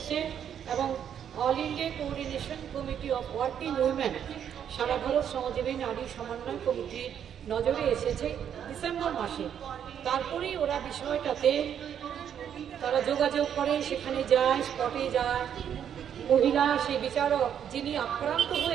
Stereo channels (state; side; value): quieter; left; 8.9 dB